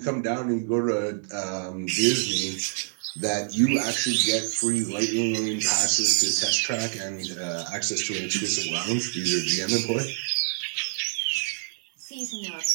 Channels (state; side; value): silent; left; 61 dB below the other